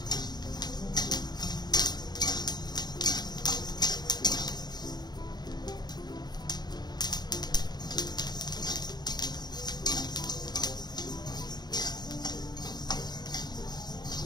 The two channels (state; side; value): late; right; 0.20 ms